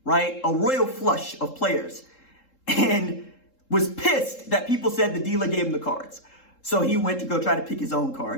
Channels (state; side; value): late; right; 3.7 ms